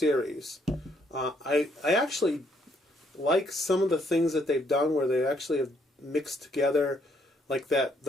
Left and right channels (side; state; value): both; normal; correlation 0.70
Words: I actually like some of the things that they've done where they actually have mixed together, like there